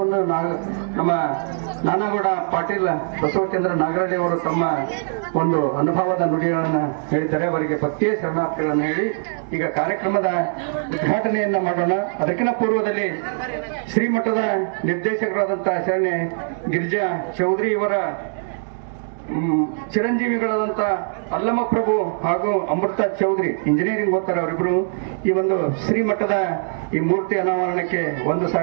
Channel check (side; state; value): left; silent; digital silence